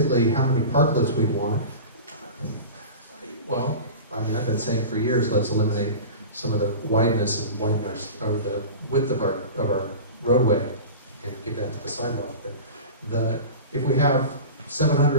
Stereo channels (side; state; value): both; inverted; correlation -0.33